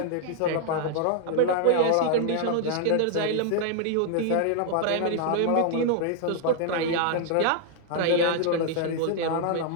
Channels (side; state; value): both; different; correlation 0.00